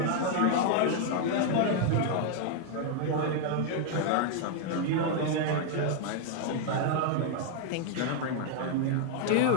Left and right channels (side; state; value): both; different; correlation 0.00